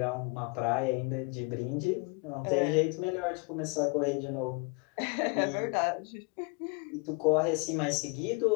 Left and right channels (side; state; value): right; quieter; 31.3 dB